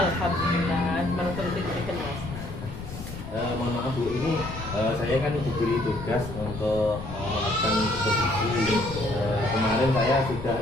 mantul diberikan Mas. Mohon maaf Bu, ini saya kan diberi tugas untuk melakukan supervisi. Kemarin saya sudah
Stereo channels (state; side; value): noise; left; rumble, 10 dB below the sound